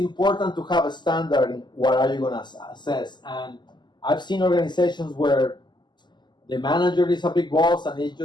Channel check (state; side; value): late; right; 0.21 ms